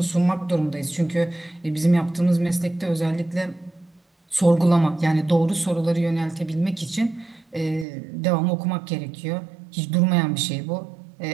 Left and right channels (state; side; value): drops out; left; at 7.9 s